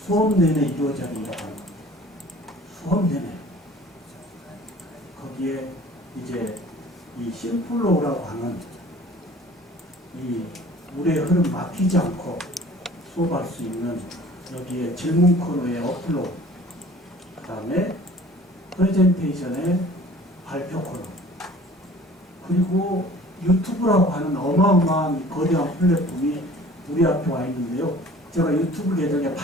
수업 내내 이루어져야 된다고 합니다. 수업 내내. 거기에 이제 이 심플로우라고 하는 이 물의 흐름 막히지 않고 수업할 수 있는 여기에 질문 코너의 업로드, 그 다음에 프레젠테이션의 발표 코너, 그리고 유튜브라고 하는 어마어마한 거대한 플랫폼이 우리 앞에 와 있는데요. 제가 유튜브 계정에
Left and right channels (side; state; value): both; normal; correlation 0.48